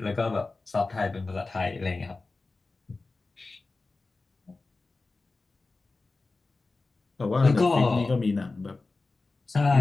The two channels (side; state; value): right; quieter; 3.6 dB